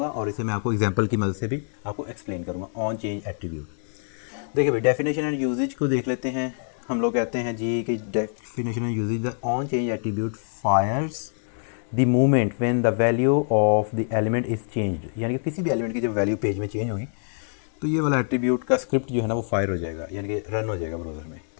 और इसे मैं आपको एग्जांपल की मदद से भी आपको एक्सप्लेन करूंगा ऑन चेंज एट्रीब्यूट। देखिए भाई डेफिनेशन एंड यूजेज को देख लेते हैं। हम लोग कहते हैं जी कि definition and usage the on change attribute fires the movement when the value of the element is changed, यानी कि किसी भी एलिमेंट की जब वैल्यू पेज में चेंज होगी तो ये वाला एट्रीब्यूट का स्क्रिप्ट जो है ना वो फायर हो जाएगा, यानी कि रन हो जाएगा ब्राउज़र में।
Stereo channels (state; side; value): silent; right; 62 dB below the other